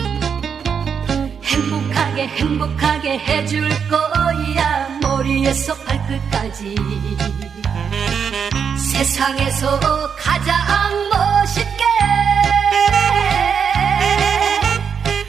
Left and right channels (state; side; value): quieter; left; 6.9 dB